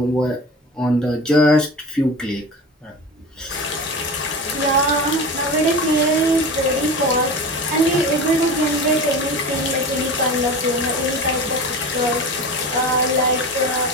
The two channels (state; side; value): normal; both; correlation 0.31